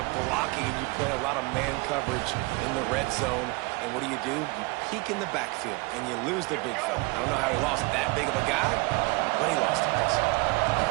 blocking, and you play a lot of man coverage in the red zone. And what do? You peek in the backfield, and you lose the big fella. I don't know how he lost that big of a guy, but he lost it.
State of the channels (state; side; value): quieter; left; 26.2 dB